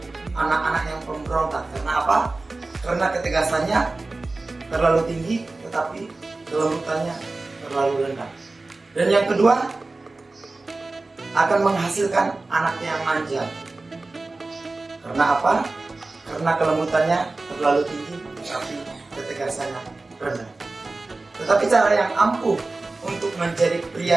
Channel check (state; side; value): quieter; left; 3.3 dB